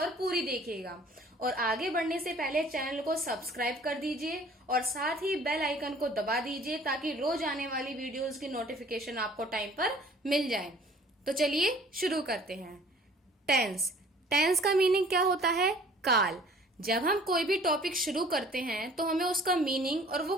पूरी देखिएगा। और आगे बढ़ने से पहले चैनल को सब्सक्राइब कर दीजिए और साथ ही बेल आइकन को दबा दीजिए ताकि रोज आने वाली वीडियोस की नोटिफिकेशन आपको टाइम पर मिल जाए। तो चलिए शुरू करते हैं। टेंस का मीनिंग क्या होता है? काल। जब हम कोई भी टॉपिक शुरू करते हैं तो हमें उसका मीनिंग और वो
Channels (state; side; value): normal; both; correlation 0.52